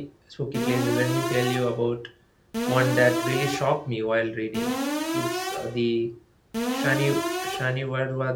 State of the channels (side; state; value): both; identical; correlation 1.00